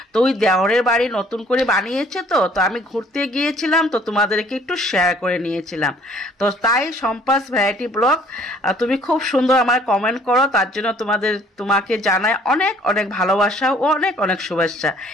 তো ওই দেওরের বাড়ি নতুন করে বানিয়েছে, তো আমি ঘুরতে গিয়েছিলাম, তো তোমাদেরকে একটু শেয়ার করে নিয়েছিলাম। তো তাই সম্পাস ভ্যারাইটি ব্লগ তুমি খুব সুন্দর আমার কমেন্ট করো, তার জন্য তোমাকে জানাই অনেক অনেক ভালোবাসা ও অনেক অনেক শুভেচ্ছা।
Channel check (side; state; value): both; normal; correlation 0.58